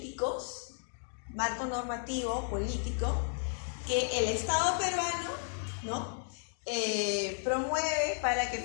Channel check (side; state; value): right; silent; digital silence